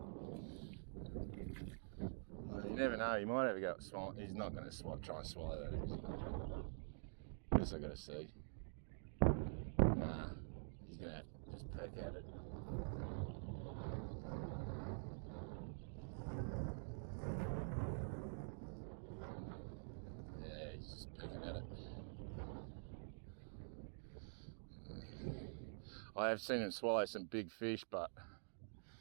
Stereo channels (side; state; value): left; silent; digital silence